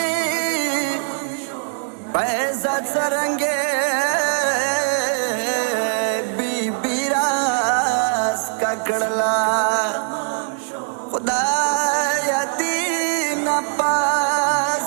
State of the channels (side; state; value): left; silent; digital silence